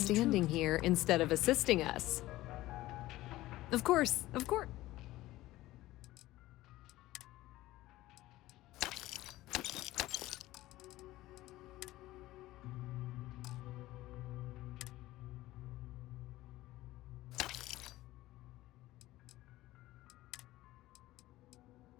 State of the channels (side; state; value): right; quieter; 16.8 dB